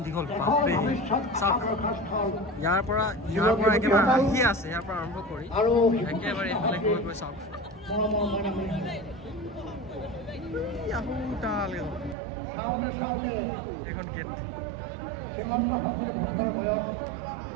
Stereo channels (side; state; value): left; drops out; at 12.2 s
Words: দীঘল বাপৰে চাওক ইয়াৰ পৰা একেবাৰে আহি আছে ইয়াৰ পৰা আৰম্ভ কৰি একেবাৰে এইফালে গৈ গৈ চাওক এইখন গেট